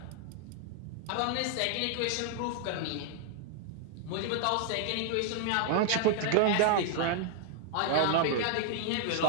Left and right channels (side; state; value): both; different; correlation 0.00